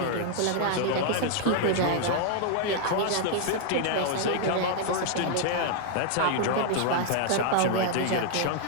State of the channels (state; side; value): different; both; correlation 0.00